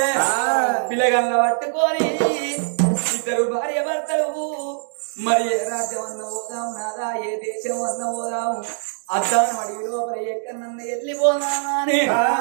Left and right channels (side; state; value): left; silent; digital silence